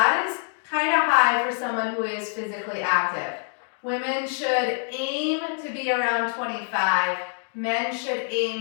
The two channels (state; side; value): silent; right; 61 dB below the other